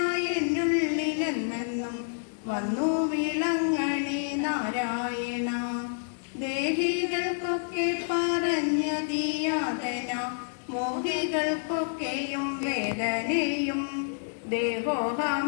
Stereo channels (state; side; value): silent; right; digital silence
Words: എന്നുള്ളിലെന്നെന്നും വന്നു വീളങ്ങണി നാരായണ. ദേഹികൾക്കൊക്കെ പറഞ്ഞതിയാതന മോഹികൾക്കൊക്കെയും വേദനയും.